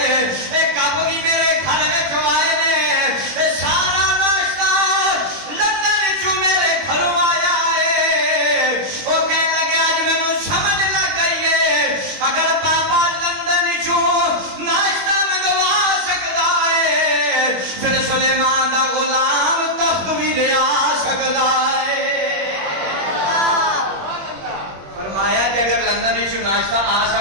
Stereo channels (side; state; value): left; late; 21 ms